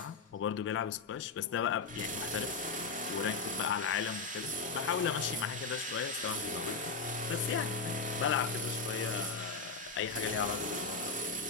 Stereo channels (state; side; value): quieter; right; 4.4 dB